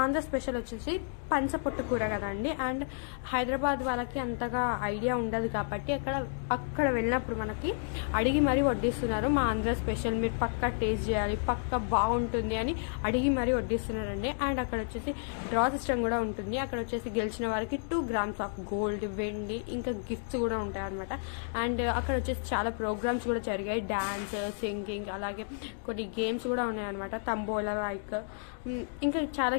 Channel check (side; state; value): right; silent; digital silence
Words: ఆంధ్ర స్పెషల్ వచ్చేసి పంచ పొట్టు కూర కదండి. అండ్ హైదరాబాద్ వాళ్ళకి అంతగా ఐడియా ఉండదు కాబట్టి అక్కడ వెళ్ళినప్పుడు మనకి అడిగి మరీ వడ్డిస్తున్నారు. మా ఆంధ్ర స్పెషల్ మీరు పక్కా టేస్ట్ చేయాలి, పక్కా బాగుంటుంది అని అడిగి మరీ వడ్డిస్తున్నారండి. అండ్ అక్కడ వచ్చేసి డ్రా సిస్టమ్ కూడా ఉంటుంది. అక్కడ వచ్చేసి గెలిచిన వారికి 2 grams ఆఫ్ గోల్డ్, వెండి, ఇంకా గిఫ్ట్స్ కూడా ఉంటాయి అనమాట. అండ్ అక్కడ వచ్చేసి చాలా ప్రోగ్రామ్స్ కూడా జరిగాయి. డాన్స్, సింగింగ్, అలాగే కొన్ని గేమ్స్ కూడా ఉన్నాయి అనమాట. తంబోలా లైక్ ఇంకా చాలా